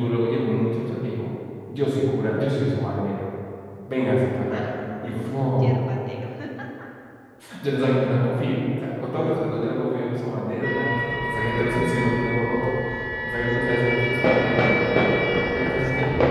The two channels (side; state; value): both; identical; correlation 1.00